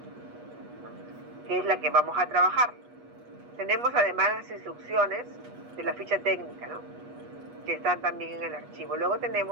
que es la que vamos a trabajar. Tenemos además las instrucciones de la ficha técnica, ¿no? Que están también en el archivo. Luego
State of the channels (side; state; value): left; late; 8.3 ms